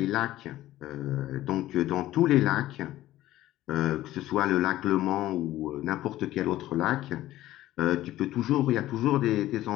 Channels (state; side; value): quieter; right; 15.0 dB